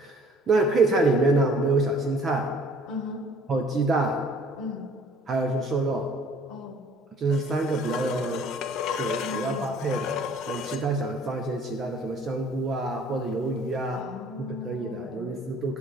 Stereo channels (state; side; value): normal; both; correlation 0.55